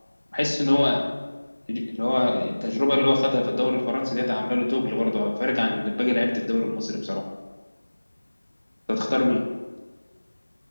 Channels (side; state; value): both; inverted; correlation -1.00